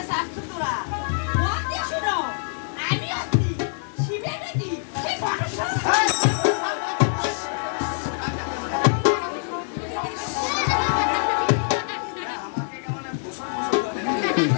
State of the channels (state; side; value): silent; right; 62 dB below the other